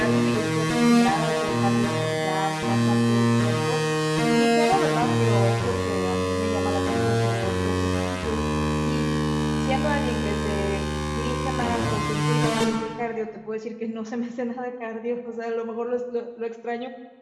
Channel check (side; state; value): both; identical; correlation 1.00